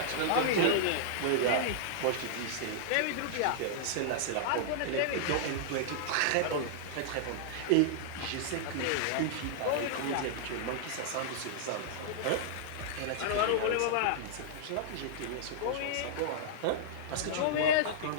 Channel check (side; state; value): both; different; correlation -0.02